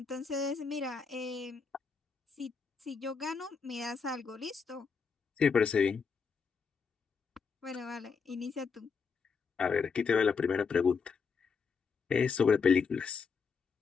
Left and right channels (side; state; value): right; quieter; 5.5 dB